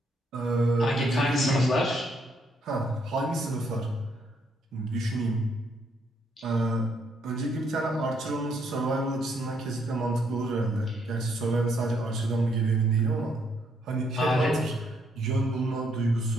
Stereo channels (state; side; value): normal; both; correlation 0.72